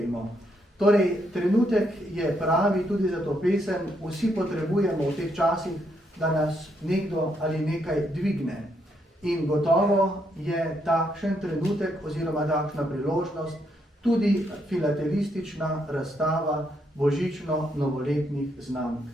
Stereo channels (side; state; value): both; normal; correlation 0.76